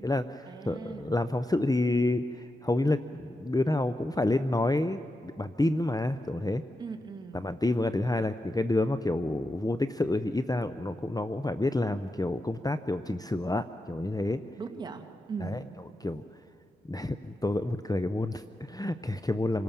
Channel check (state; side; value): normal; both; correlation 0.88